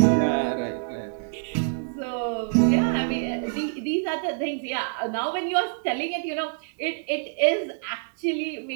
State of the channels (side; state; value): left; silent; digital silence